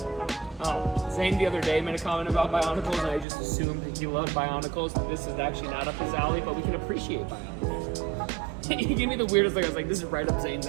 Oh, Zane the other day made a comment about Bionicles, and I just assumed that he loved Bionicles. This is actually not up his alley, but we can appreciate Bionicles. He gave me the weirdest look. I was like, this is right up Zane's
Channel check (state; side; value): drops out; left; at 3.2 s